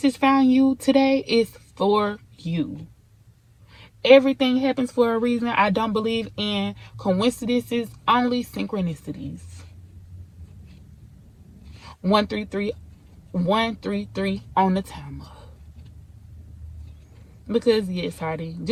found you today, it's for you. Everything happens for a reason. I don't believe in coincidences, only synchronicities. 133, 133 on the timer. Because yes, Hardy,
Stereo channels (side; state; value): both; identical; correlation 1.00